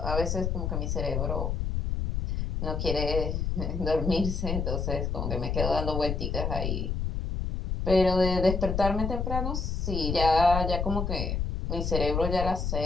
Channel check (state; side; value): noise; left; rumble, 1 dB below the sound